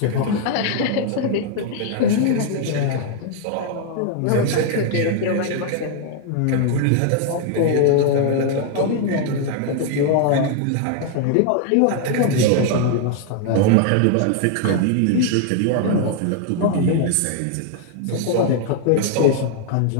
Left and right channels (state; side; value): different; both; correlation 0.00